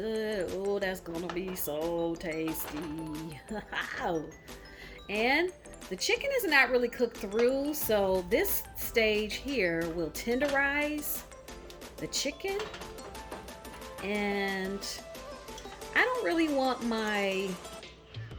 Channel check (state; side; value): identical; both; correlation 1.00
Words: Oh, that's gonna be so tasty. And the chicken is not really cooked through, so this stage here will tenderize the chicken. And I don't really want my